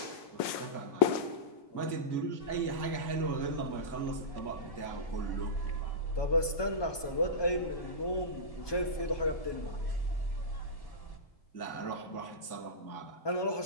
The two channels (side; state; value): right; late; 1.2 ms